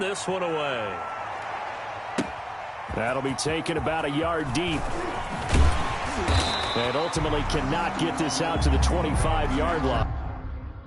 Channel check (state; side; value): identical; both; correlation 1.00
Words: this one away. That'll be taken about a yard deep. And ultimately cannot get this out to the 25-yard line.